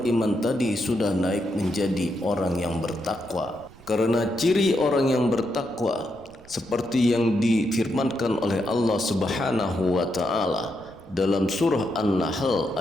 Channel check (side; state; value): right; noise; rumble, 23 dB below the sound